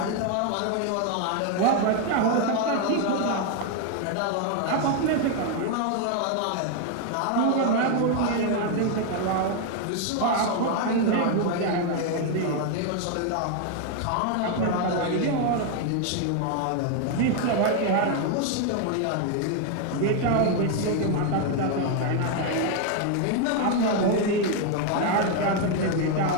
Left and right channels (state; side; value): different; both; correlation 0.01